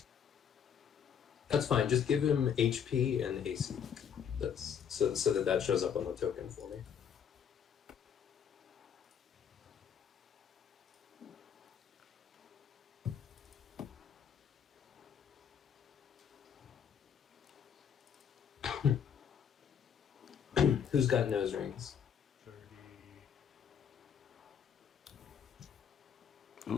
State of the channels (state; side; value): quieter; right; 7.9 dB